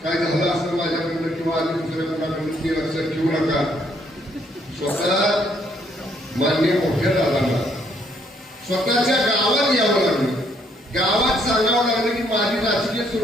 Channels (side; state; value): both; normal; correlation 0.69